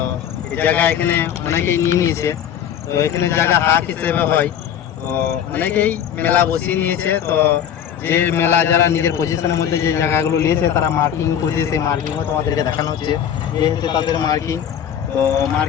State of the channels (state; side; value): quieter; right; 9.3 dB